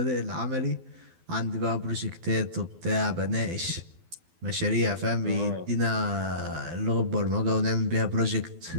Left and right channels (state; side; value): late; left; 12 ms